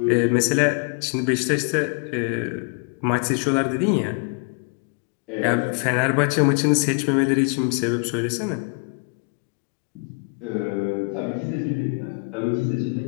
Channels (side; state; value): right; quieter; 36.6 dB